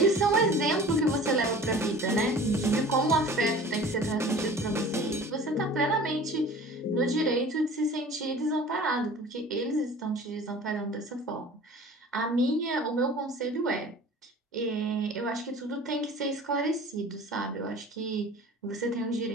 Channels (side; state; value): both; normal; correlation 0.43